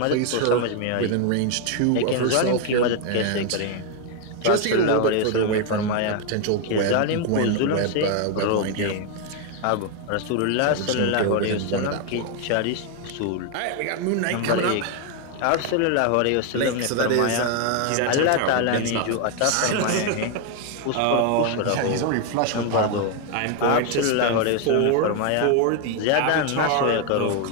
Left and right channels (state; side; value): different; both; correlation 0.01